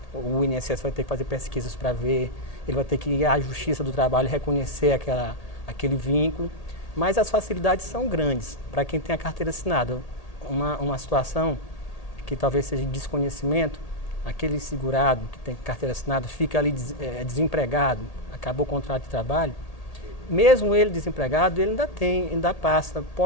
o INSS vai ter que fazer pesquisas para ver, ele vai ter que ir à Justiça do Trabalho e reconhecer aquele vínculo, mas as facilidades são grandes para quem tem a carteira assinada. Uma situação que talvez seja de desconhecimento, aquele segurado que tem carteira assinada fica ali desempregado, acabou o contrato de trabalho, mesmo ele desempregado, ele ainda passa,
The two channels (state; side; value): late; right; 1.8 ms